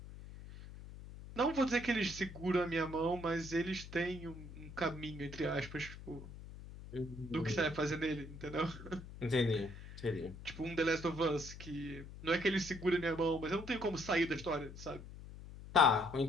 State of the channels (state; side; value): noise; left; hum, 13 dB below the sound